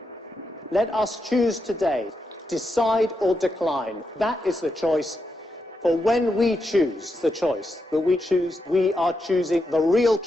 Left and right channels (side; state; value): both; normal; correlation 0.85